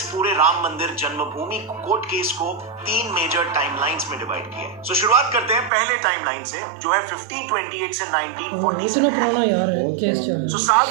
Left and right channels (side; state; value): left; drops out; at 5.7 s